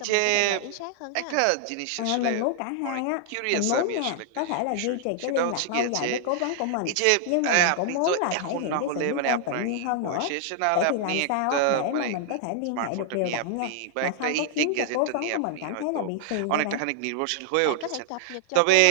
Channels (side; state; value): both; different; correlation 0.00